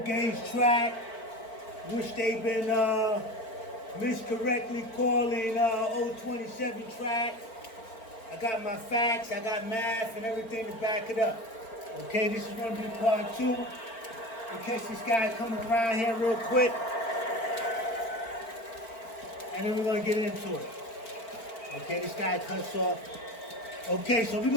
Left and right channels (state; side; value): late; right; 4.4 ms